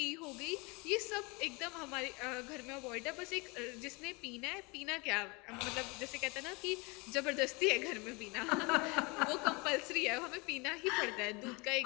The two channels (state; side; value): quieter; right; 27.8 dB